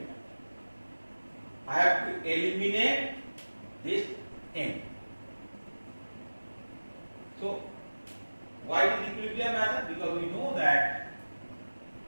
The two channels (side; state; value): both; inverted; correlation -1.00